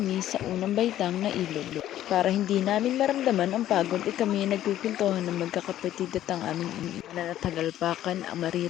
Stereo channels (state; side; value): quieter; right; 12.6 dB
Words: sa unang baitang na ilog. Para hindi namin maramdaman ang pagod ay kami nagpipintuhan ng magkakapatid at ang aming ina na tagalpakan ang